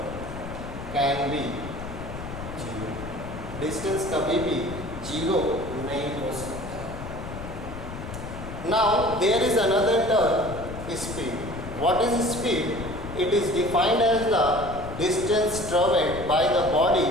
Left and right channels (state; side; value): noise; left; rumble, 10 dB below the sound